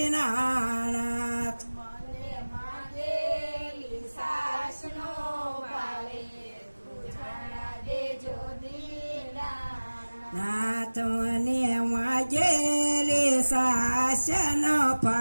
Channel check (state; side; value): inverted; both; correlation -1.00